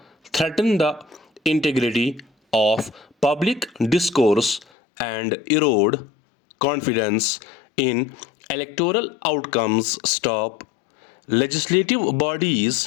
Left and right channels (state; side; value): drops out; right; at 4.7 s